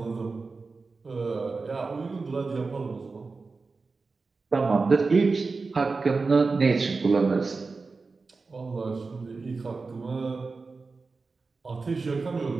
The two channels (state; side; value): quieter; left; 4.1 dB